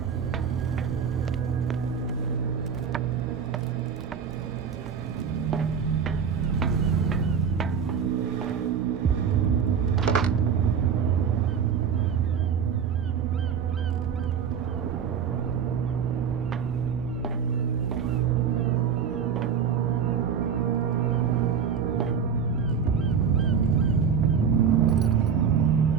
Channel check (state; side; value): quieter; left; 7.1 dB